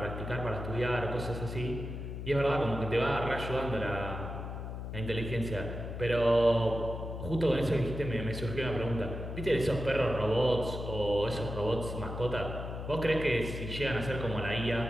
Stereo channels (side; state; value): left; noise; hum, 7 dB below the sound